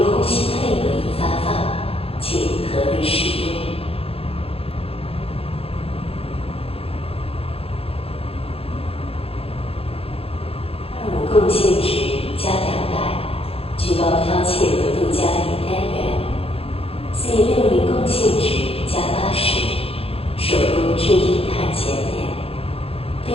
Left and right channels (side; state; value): right; late; 0.28 ms